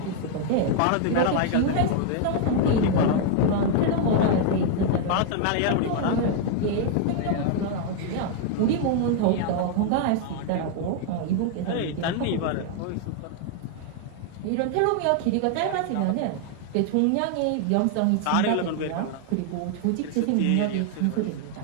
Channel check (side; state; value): both; different; correlation 0.00